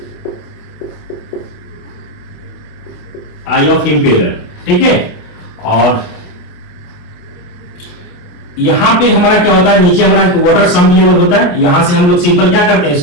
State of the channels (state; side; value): late; right; 28 ms